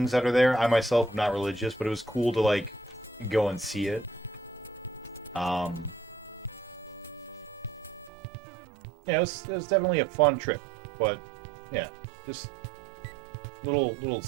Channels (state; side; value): drops out; left; at 8.1 s